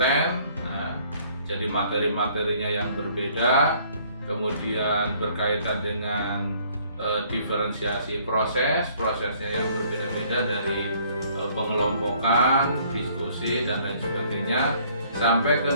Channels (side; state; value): both; inverted; correlation -0.60